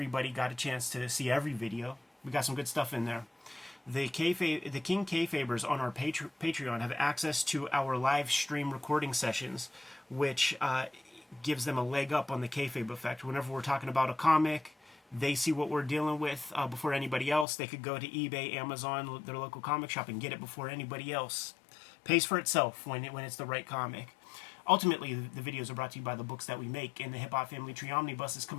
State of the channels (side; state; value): right; drops out; at 17.4 s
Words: got a chance to see every video. We got some good stuff in there. The King Kayfabers on our Patreon have access to our live stream recording sessions, which gives them a leg up on the kayfabe effect. Whenever we're talking about a comic, they see what we're dealing with before anybody else. They could go to eBay, Amazon, their local comic shop, and get it before anybody else. Pays for itself when it's the right comic. ultimately, the videos are brought to you by the books that we make, and the Hip Hop Family Tree Omnibus is